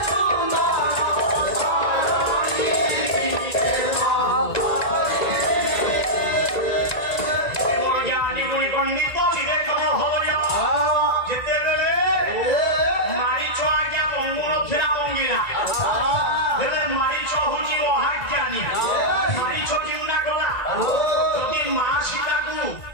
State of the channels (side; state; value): right; late; 1.9 ms